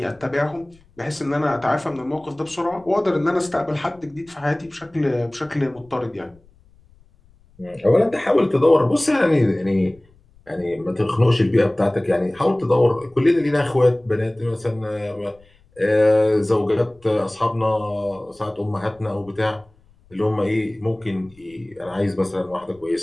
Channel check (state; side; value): noise; left; rumble, 30 dB below the sound